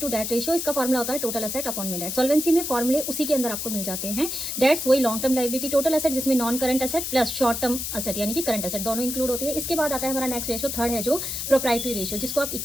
to debt ratio. इसका फॉर्मुला होता है टोटल एसेट अपॉन में डेट। सॉल्वेंसी में फॉर्मुले उसी के अंदर आपको मिल जाते हैं। डेट्स वही long term liability, total asset जिसमें non current asset plus short term asset यानी कि करंट एसेट दोनों इंक्लूड होती है। इसके बाद आता है हमारा नेक्स्ट रेशियो, थर्ड है जो प्रोप्राइटरी रेशियो, जिसको आप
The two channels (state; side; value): noise; left; hiss, 4 dB below the sound